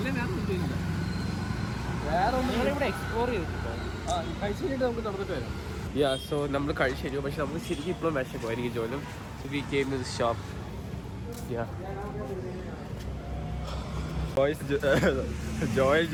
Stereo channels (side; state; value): both; identical; correlation 1.00